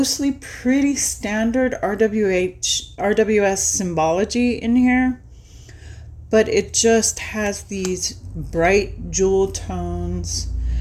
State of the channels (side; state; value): both; identical; correlation 1.00